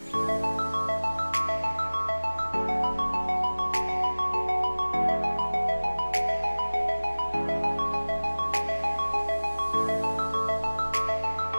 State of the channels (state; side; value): inverted; both; correlation -1.00